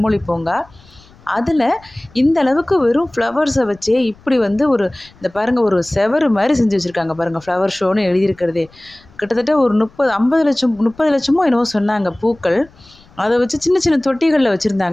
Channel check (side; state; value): left; noise; rumble, 27 dB below the sound